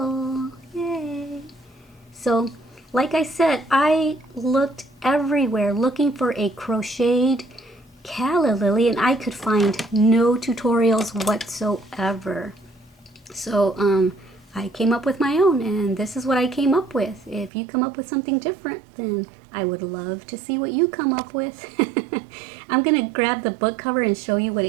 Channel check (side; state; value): left; drops out; at 17.5 s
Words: Yay! So, like I said, I looked everywhere looking for a crocheted calla lily, and I could find no tutorials whatsoever. So I came up with my own, and this is what I came up with. If you come up with something different, then I would love to see what you come up with. I'm gonna grab the book cover and show you what